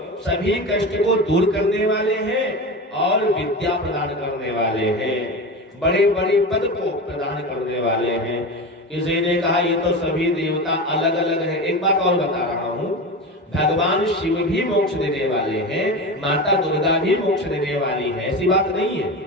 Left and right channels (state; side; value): normal; both; correlation 0.25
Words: सभी कष्ट को दूर करने वाले हैं और विद्या प्रदान करने वाले हैं, बड़े बड़े पद को प्रदान करने वाले हैं। किसी ने कहा ये तो सभी देवता अलग अलग है। एक बात और बता रहा हूँ, भगवान शिव भी मोक्ष देने वाले हैं, माता दुर्गा भी मोक्ष देने वाली है, ऐसी बात नहीं है।